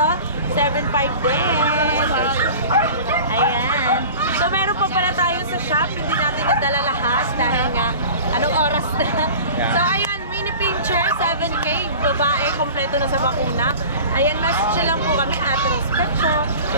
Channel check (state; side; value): inverted; both; correlation -0.39